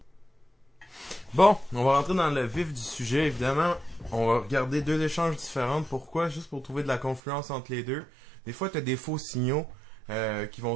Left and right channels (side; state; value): left; drops out; at 7.2 s